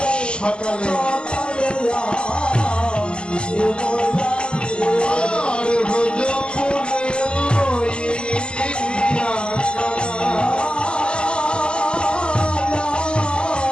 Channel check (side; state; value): right; late; 0.050 ms